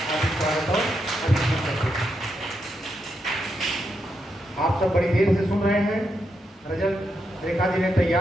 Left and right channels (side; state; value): both; normal; correlation 0.83